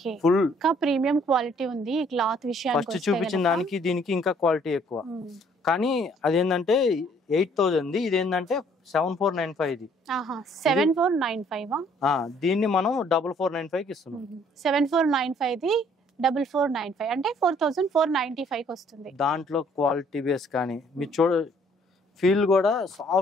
ఫుల్ ప్రీమియం క్వాలిటీ ఉంది. క్లాత్ విషయానికి ఫస్ట్ చూపించిన దానికి దీనికి ఇంకా క్వాలిటీ ఎక్కువ. కానీ అదేంటంటే 8000 ది, ఇదేంటంటే 7495 ది. 7495 దీన్ని మనం 4495 కి ఇస్తున్నాం. 7495 ది 4495 అంటే 4495 కి వస్తుంది. దాంట్లో క్వాలిటీ బేస్ కానీ మీరు చూడ ఫీల్ కూడా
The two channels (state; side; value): normal; both; correlation 0.61